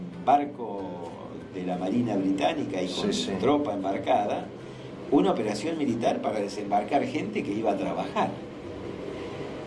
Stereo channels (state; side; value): identical; both; correlation 1.00